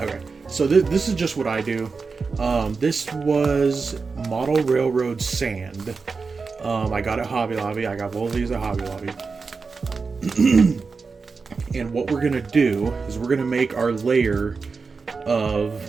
so this is just what I do. This was Model Railroad sand. I got it at Hobby Lobby. I got both of these at Hobby Lobby. And what we're gonna do is we're gonna make our layer of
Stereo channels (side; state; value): left; quieter; 4.7 dB